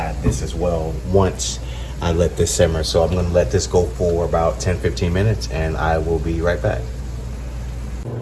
this as well once I let this simmer. So I'm gonna let this go for about 10-15 minutes and I will be right back.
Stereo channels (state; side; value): identical; both; correlation 1.00